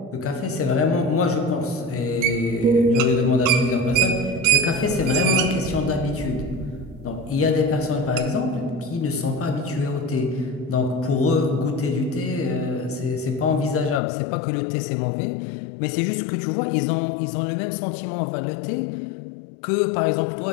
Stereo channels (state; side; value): drops out; right; at 14.0 s